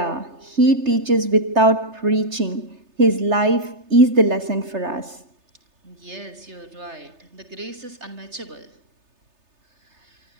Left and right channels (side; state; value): left; late; 3.3 ms